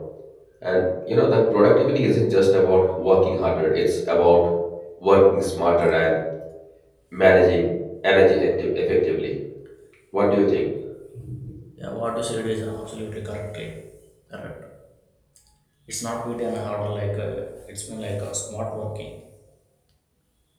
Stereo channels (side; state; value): both; identical; correlation 1.00